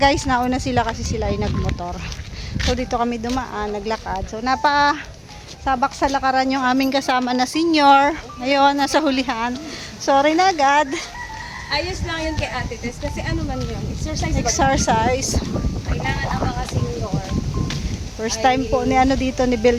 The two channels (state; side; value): identical; both; correlation 1.00